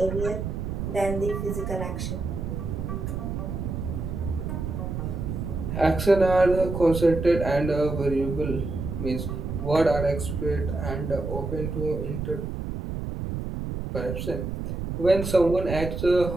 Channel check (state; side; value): noise; right; rumble, 4 dB below the sound